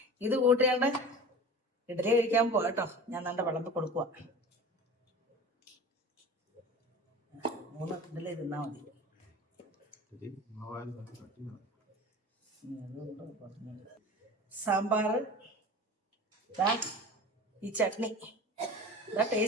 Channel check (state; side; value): normal; both; correlation 0.36